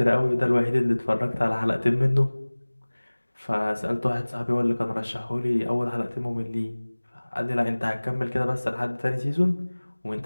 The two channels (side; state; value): both; inverted; correlation -1.00